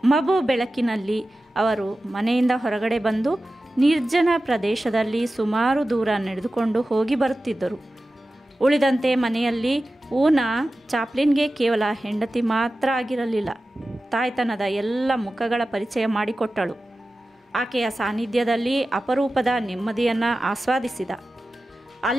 ಮಬು ಬೆಳಕಿನಲ್ಲಿ ಅವರು ಮನೆಯಿಂದ ಹೊರಗಡೆ ಬಂದು ನಿರ್ಜನ ಪ್ರದೇಶದಲ್ಲಿ ಸುಮಾರು ದೂರ ನಡೆದುಕೊಂಡು ಹೋಗಿ ಬರುತ್ತಿದ್ದರು. ಉಳಿದಂತೆ ಮನೆಯಲ್ಲಿ ಊನಾ ಚಾಪ್ಲಿನ್ಗೆ ಕೇವಲ ಹೆಂಡತಿ ಮಾತ್ರ ಆಗಿರಲಿಲ್ಲ, ತಾಯ್ತನದ ಎಲ್ಲ ಮುಖಗಳ ಪರಿಚಯ ಮಾಡಿಕೊಟ್ಟಳು. ಆಕೆಯ ಸಾನ್ನಿಧ್ಯದಲ್ಲಿ ಅಪರೂಪದ ನೆಮ್ಮದಿಯನ್ನು ಆಸ್ವಾದಿಸಿದ.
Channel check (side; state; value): both; normal; correlation 0.94